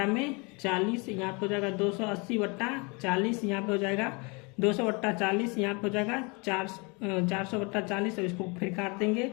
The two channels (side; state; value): right; quieter; 29.7 dB